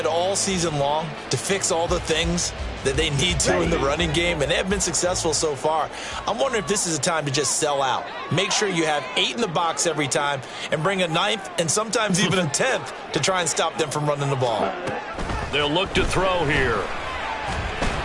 all season long to fix all the things that they need to in the running game, and they have been successful so far. I'm wondering if this is a time to just sell out. Make sure you have 8 in the box every time and bring a 9th and sometimes even a 10th to try and stop them from running the ball. They'll look to throw here.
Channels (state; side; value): identical; both; correlation 1.00